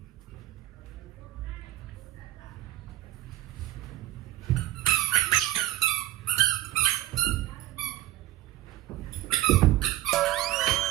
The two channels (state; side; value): quieter; left; 15.3 dB